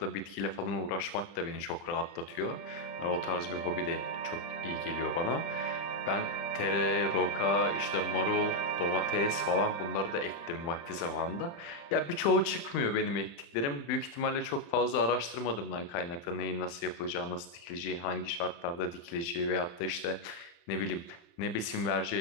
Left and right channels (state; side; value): late; right; 35 ms